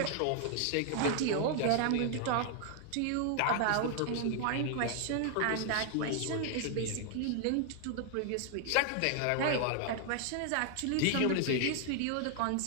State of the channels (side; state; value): both; different; correlation 0.00